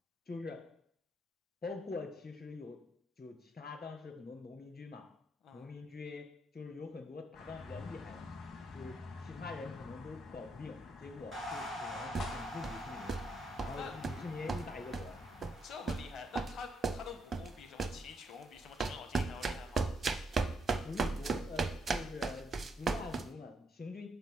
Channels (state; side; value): normal; both; correlation 0.76